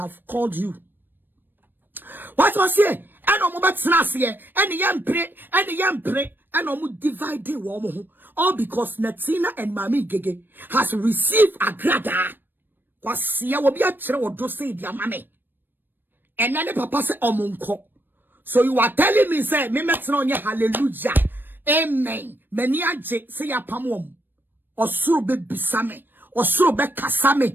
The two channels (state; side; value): late; left; 0.094 ms